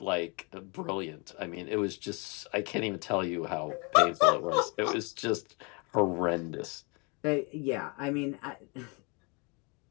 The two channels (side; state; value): right; quieter; 31.6 dB